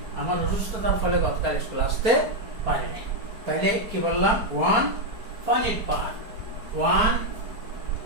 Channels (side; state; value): left; late; 4.6 ms